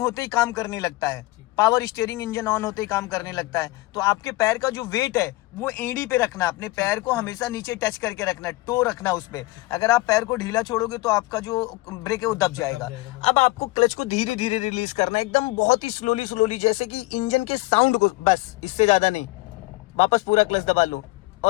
ही काम करने लगता है, पावर स्टीयरिंग इंजन ऑन होते ही काम करने लगता है। तो आपके पैर का जो वेट है वो एड़ी पे रखना, अपने पैर को हमेशा नीचे टच करके रखना, टो रखना उस पे। अगर आप पैर को ढीला छोड़ोगे तो आपका जो ब्रेक है वो दब जाएगा। अब आपको क्लच को धीरे धीरे रिलीज करना है, एकदम बहुत ही स्लोली, जैसे कि इंजन के साउंड को, बस इससे ज्यादा नहीं। वापस पूरा क्लच दबा लो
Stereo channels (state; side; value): quieter; right; 21.0 dB